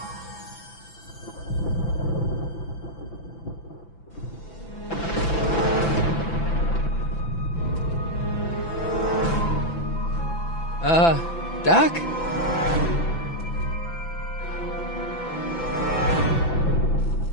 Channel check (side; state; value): right; late; 6.0 ms